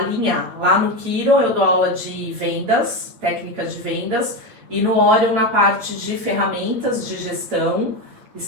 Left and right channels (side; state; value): left; late; 9.0 ms